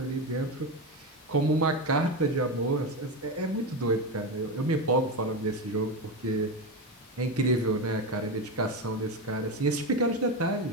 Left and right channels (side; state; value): both; normal; correlation 0.16